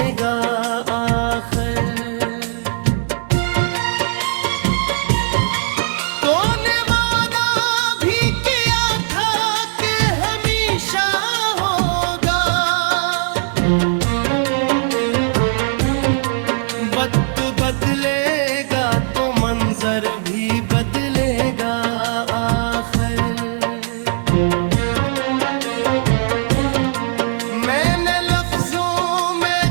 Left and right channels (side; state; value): left; silent; 56 dB below the other